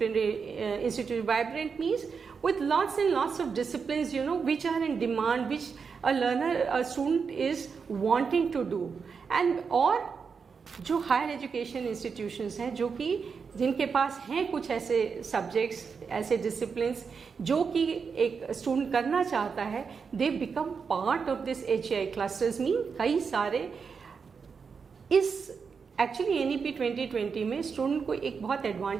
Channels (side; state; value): left; quieter; 5.7 dB